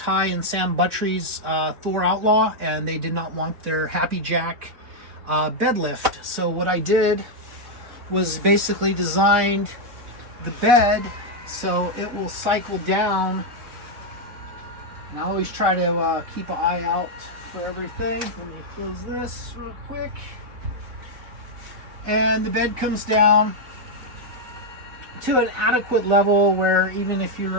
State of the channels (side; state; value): left; late; 4.0 ms